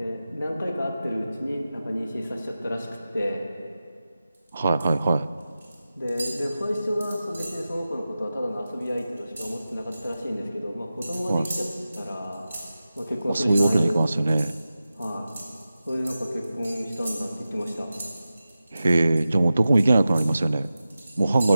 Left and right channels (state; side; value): inverted; both; correlation -0.94